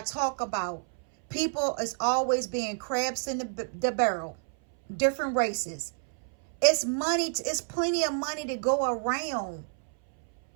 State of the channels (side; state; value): left; silent; 59 dB below the other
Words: talk about, people is always being crabs in the barrel. Different races. It's money. It's plenty of money to go around.